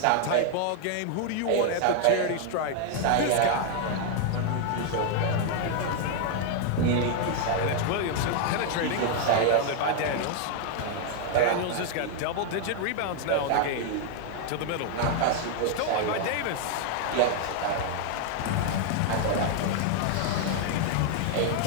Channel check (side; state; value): both; different; correlation 0.00